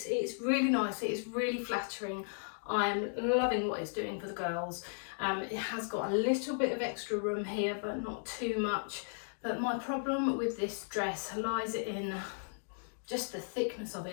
really nice, it's really flattering. I'm loving what it's doing for the girls. It has got a little bit of extra room here, but not too much. But my problem with this dress lies in just the thickness of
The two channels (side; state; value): right; silent; digital silence